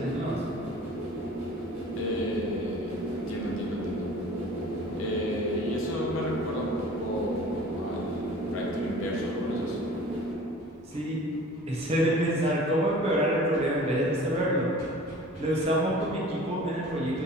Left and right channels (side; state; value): both; normal; correlation 0.44